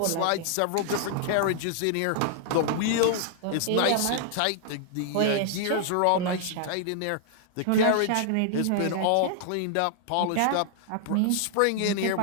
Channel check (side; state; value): both; different; correlation -0.01